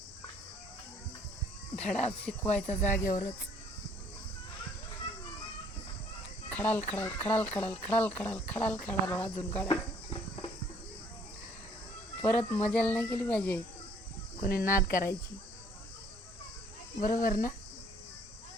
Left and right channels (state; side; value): normal; both; correlation 0.61